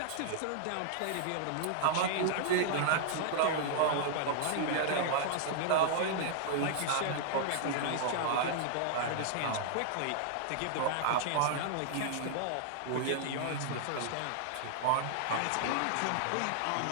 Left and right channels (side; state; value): both; different; correlation -0.01